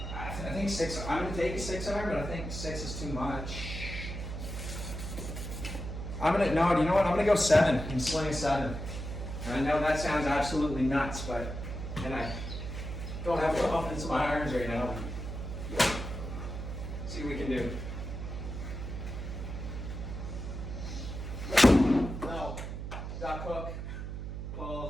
I think 6, I'm gonna take a 6-iron, but I think 6 is too much. No, you know what? I'm gonna go 7 and sling 7. And I know that sounds absolutely nuts, but, and I don't have confidence in my irons right now. See what we can do. No, duck hook,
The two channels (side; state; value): right; noise; hum, 6 dB below the sound